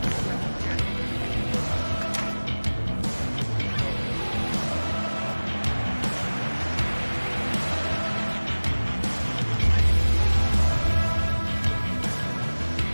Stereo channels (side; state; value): both; inverted; correlation -1.00